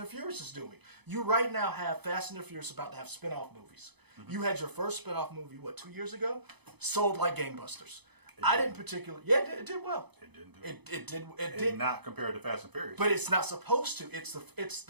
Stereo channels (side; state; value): left; late; 0.99 ms